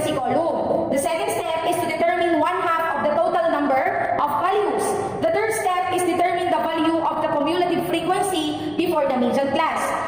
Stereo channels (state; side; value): noise; left; rumble, 27 dB below the sound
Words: column. The second step is to determine 1/2 of the total number of values. The third step is determine the value of the cumulative frequency before the median class.